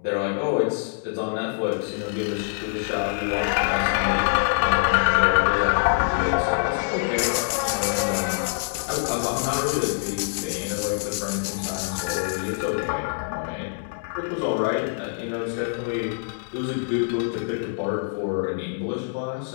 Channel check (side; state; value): right; silent; digital silence